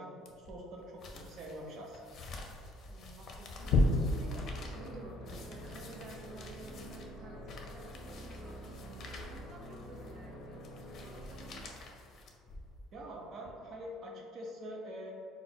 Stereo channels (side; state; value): both; normal; correlation 0.64